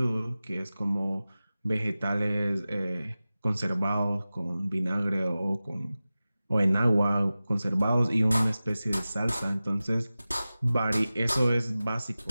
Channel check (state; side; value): inverted; both; correlation -0.96